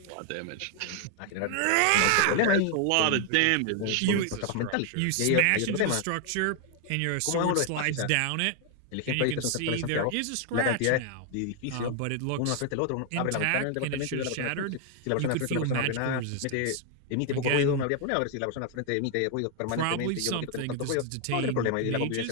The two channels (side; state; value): both; different; correlation 0.00